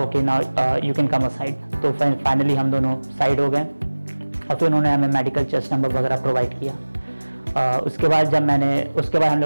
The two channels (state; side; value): inverted; both; correlation -1.00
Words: now you can come aside. तो फाइनली हम दोनों साइड हो गए और फिर उन्होंने हमें मेडिकल चेस्ट नंबर वगैरह प्रोवाइड किया। उसके बाद हम